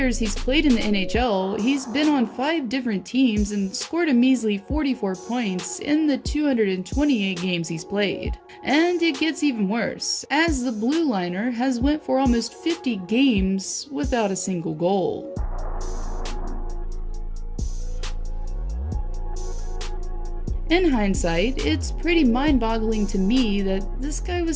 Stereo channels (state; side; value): identical; both; correlation 1.00